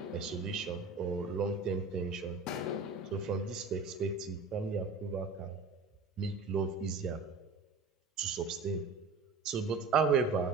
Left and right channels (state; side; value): quieter; left; 4.1 dB